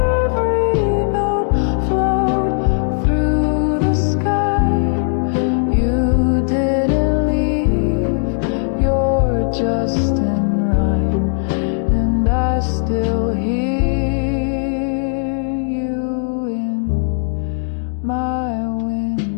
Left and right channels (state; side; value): silent; right; digital silence